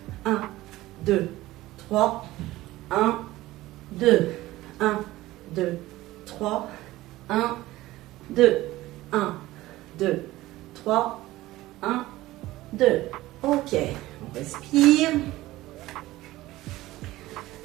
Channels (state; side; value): quieter; left; 17.2 dB